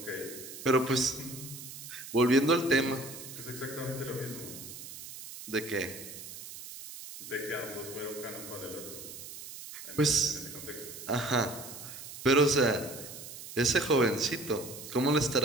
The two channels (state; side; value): noise; right; hiss, 12 dB below the sound